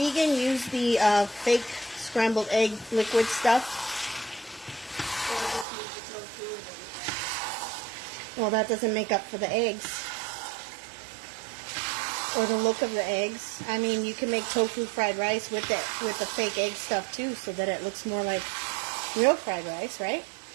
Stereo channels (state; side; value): drops out; left; at 5.7 s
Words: use the fake scrambled egg liquid stuff. Or just use the tofu. Well, that doesn't make up for the eggs. Or the look of the eggs. I mean, you can make tofu fried rice with the fake egg stuff too, so that it looks more like real fried rice, right?